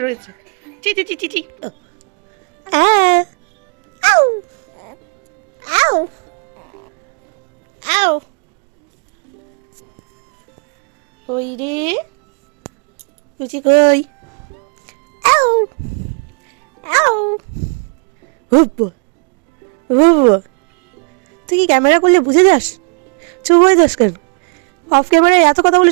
রয়েছে। চি চি চি চি চি। আউ আউ আউ। কই রে কুচি, কই? আউ আউ। তুই কি ক্যামেরা করলে বুঝে যাস? চুপ হয়ে যাস কেন? অফ ক্যামেরায় এত কথা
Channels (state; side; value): quieter; left; 35.8 dB